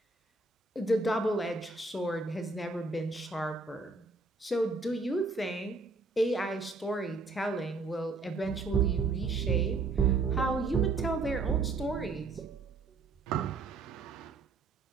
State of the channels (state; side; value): quieter; left; 3.6 dB